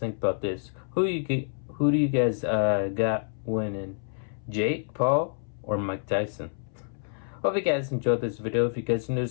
about this? Who do you guys got winning? Jake Paul or Mike Tyson? Hope you guys enjoyed this video. If you guys are new,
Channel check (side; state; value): right; silent; 59 dB below the other